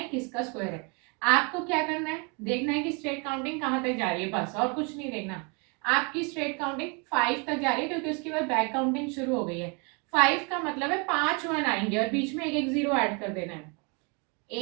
किसका स्क्वायर है। आपको क्या करना है, देखना है कि स्ट्रेट काउंटिंग कहाँ तक जा रही है, बस और कुछ नहीं देखना। आपकी स्ट्रेट काउंटिंग 5 तक जा रही है, क्योंकि उसके बाद बैक काउंटिंग शुरू हो गई है। 5 का मतलब है 5 1 आएंगे और बीच में एक एक जीरो ऐड कर देना है।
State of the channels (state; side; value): quieter; left; 33.0 dB